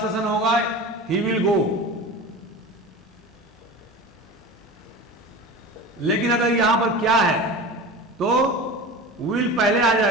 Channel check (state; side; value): normal; both; correlation 0.32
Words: होगा ही विल गो। लेकिन अगर यहां पर क्या है तो विल पहले आ